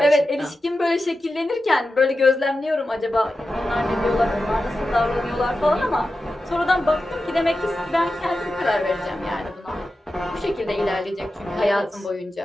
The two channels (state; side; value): normal; both; correlation 0.92